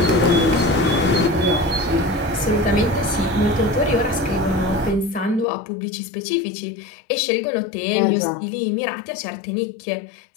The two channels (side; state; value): right; drops out; at 5.5 s